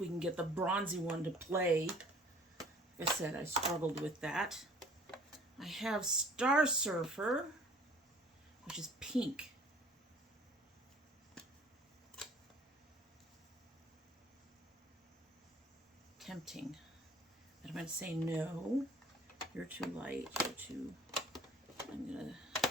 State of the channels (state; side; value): normal; both; correlation 0.52